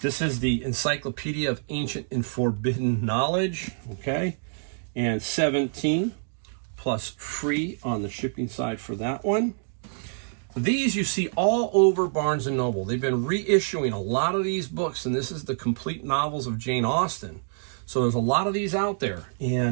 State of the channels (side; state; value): left; silent; digital silence